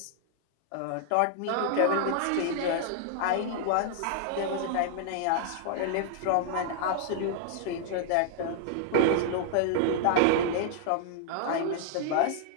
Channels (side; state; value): both; different; correlation -0.01